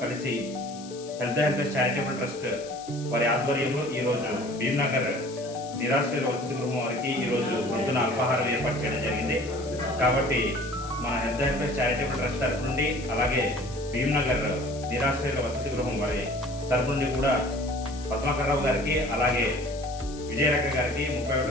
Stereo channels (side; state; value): left; noise; hiss, 17 dB below the sound